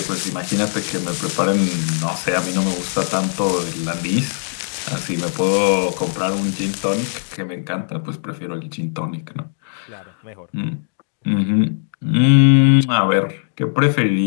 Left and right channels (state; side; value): silent; right; digital silence